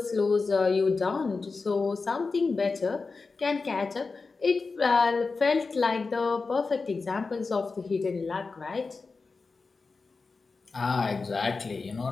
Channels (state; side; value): quieter; right; 4.2 dB